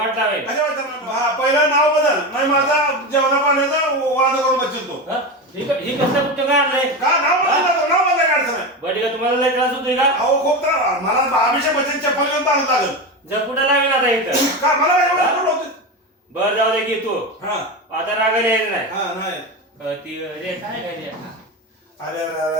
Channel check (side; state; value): both; normal; correlation 0.20